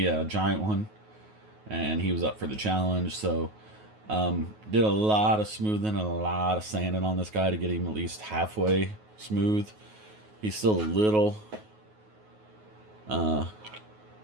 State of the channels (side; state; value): left; late; 9.4 ms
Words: a giant one, and he was up for the challenge. So did a lot of smoothing and a lot of sanding on this guy to get him at least halfway smooth. He's still a little